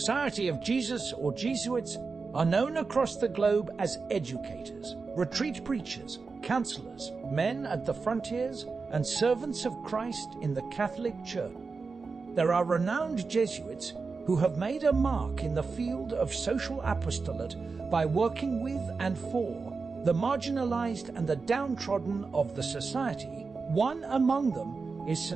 of Jesus or Jesuits are known across the globe as educators, retreat preachers, counselors, men at the frontiers, and servants of Christ in the Catholic Church. There are renowned Jesuits who have made a mark in the field of social apostolate by working with and for the marginalized and the downtrodden of the society. One among them is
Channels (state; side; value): quieter; left; 4.5 dB